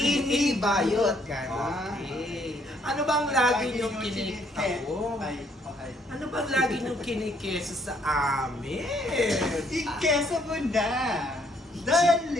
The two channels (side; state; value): both; normal; correlation 0.67